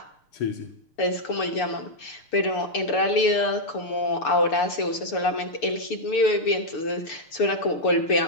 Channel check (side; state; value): right; late; 6.6 ms